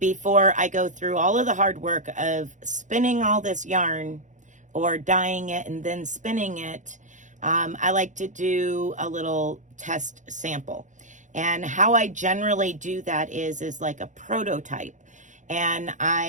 I go through all of the hard work of spinning all this yarn or dyeing it and then spinning it. I like to do a little test sample. And how I generally do that is like a prototype. And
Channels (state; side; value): late; left; 0.36 ms